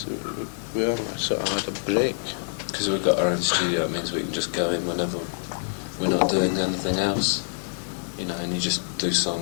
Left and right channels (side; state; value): right; silent; 60 dB below the other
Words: We haven't sort of had a break. Because we've got our own studio, it means we can just go in whenever we're not doing anything else. And you just do